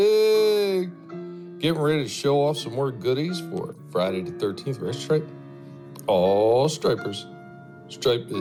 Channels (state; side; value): identical; both; correlation 1.00